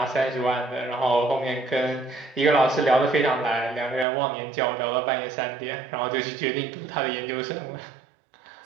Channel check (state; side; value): drops out; left; at 4.0 s